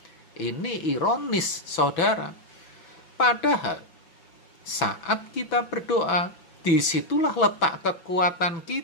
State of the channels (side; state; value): right; late; 6.0 ms